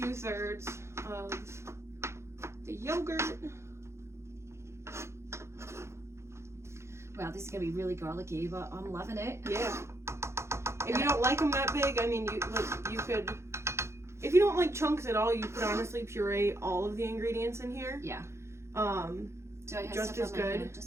of the yogurt. Wow, this is gonna be really garlicky, but I'm loving it. Yeah. If you don't like them that big, I mean, you could. If you don't like chunks at all, you could honestly puree all of the ingredients in here. Yeah. Do I have just as good.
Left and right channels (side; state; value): left; late; 0.13 ms